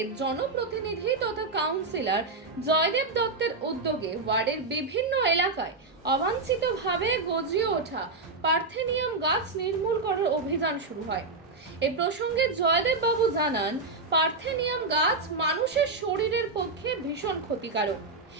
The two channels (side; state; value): left; quieter; 3.6 dB